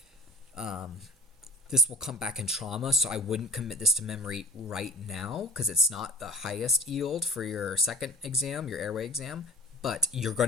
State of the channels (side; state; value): both; normal; correlation 0.41